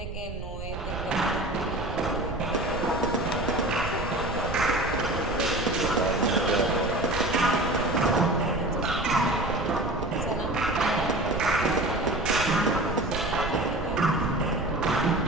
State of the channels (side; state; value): right; noise; rumble, 8 dB below the sound